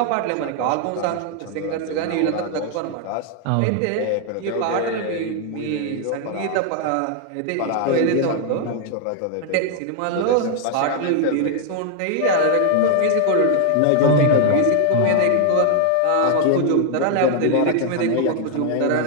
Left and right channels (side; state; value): both; different; correlation 0.00